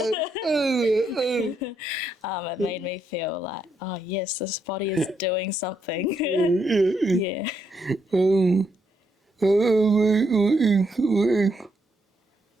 It made me feel like, oh yes, this body is doing something. Yeah.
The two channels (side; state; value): both; normal; correlation 0.77